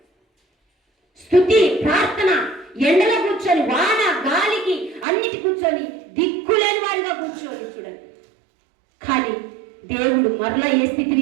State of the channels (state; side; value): drops out; left; at 5.1 s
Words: స్తుతి, ప్రార్థన, ఎండలో కూర్చొని, వాన గాలికి అన్నిటి కూర్చొని, దిక్కులేని వాడిగా కూర్చొని చూడండి. కానీ దేవుడు మరలా ఏ